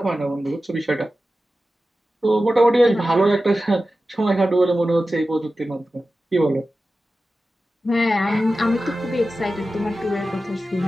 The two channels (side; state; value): both; normal; correlation 0.94